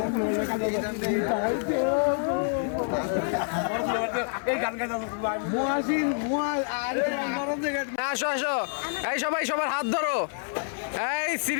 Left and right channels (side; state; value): right; silent; 57 dB below the other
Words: আসো আসো, এই সবাই সবার হাত ধরো। এই